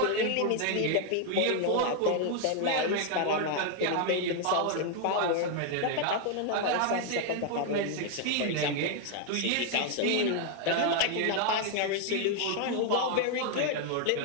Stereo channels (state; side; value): different; both; correlation 0.00